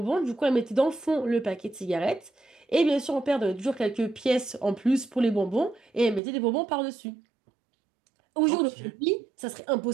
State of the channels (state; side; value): drops out; left; at 6.2 s